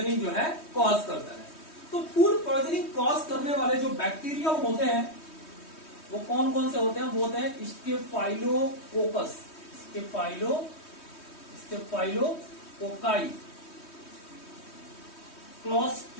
जो है कॉज करता है। तो फूड पॉइजनिंग कॉज करने वाले जो बैक्टीरिया होते हैं वो कौन कौन से होते हैं? वो होते हैं स्टेफाइलोकोकस, स्टेफाइलोकोकाई,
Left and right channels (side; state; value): right; late; 3.2 ms